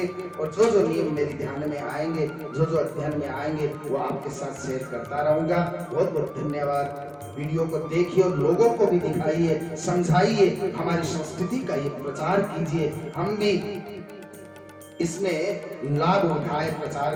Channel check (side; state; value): both; identical; correlation 1.00